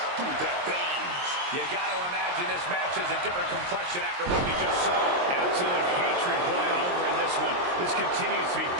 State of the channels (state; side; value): late; left; 22 ms